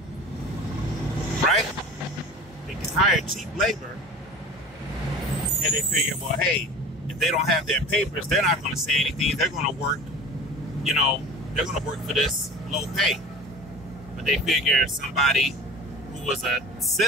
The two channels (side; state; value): both; normal; correlation 0.37